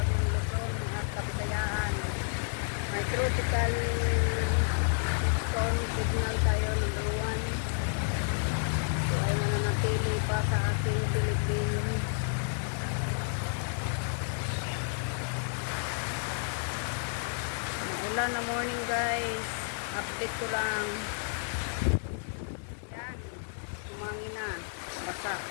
Luzon at Kabisayaan. May tropical storm signal tayo number 1. So ay mananatili pa sa ating Philippines. Maulan na morning guys. Update ko lang. Umangin na, basa.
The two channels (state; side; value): silent; right; digital silence